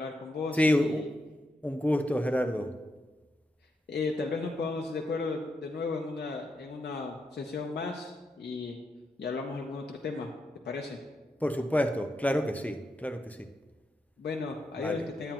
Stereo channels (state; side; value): normal; both; correlation 0.83